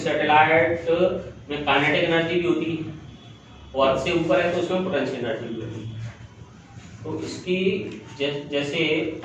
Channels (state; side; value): identical; both; correlation 1.00